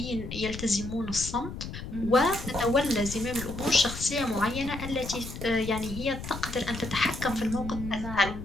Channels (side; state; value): left; noise; rumble, 9 dB below the sound